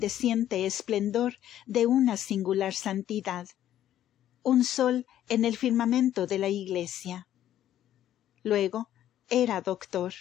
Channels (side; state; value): right; quieter; 11.8 dB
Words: esplendor de una singular santidad, un sol en el firmamento de la Iglesia. Luego era doctor,